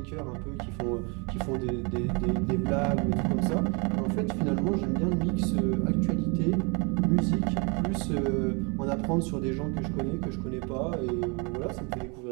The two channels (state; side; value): quieter; left; 31.8 dB